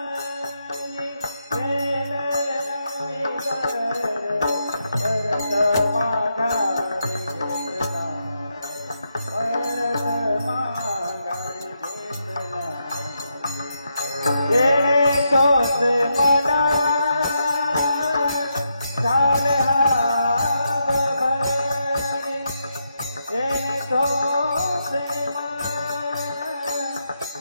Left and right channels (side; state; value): both; inverted; correlation -0.83